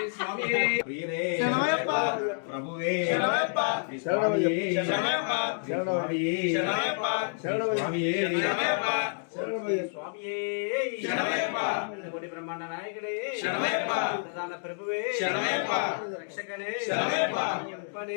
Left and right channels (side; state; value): right; silent; digital silence